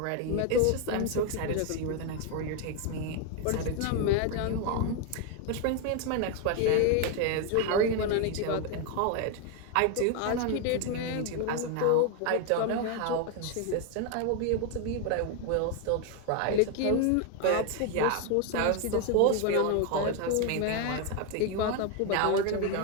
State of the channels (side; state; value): both; different; correlation 0.01